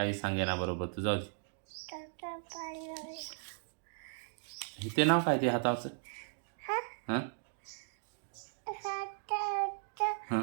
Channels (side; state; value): left; silent; digital silence